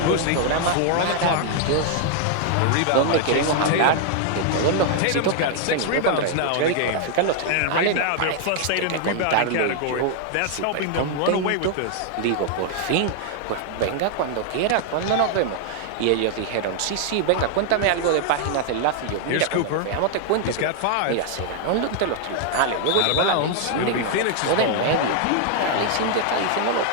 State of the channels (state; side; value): different; both; correlation 0.00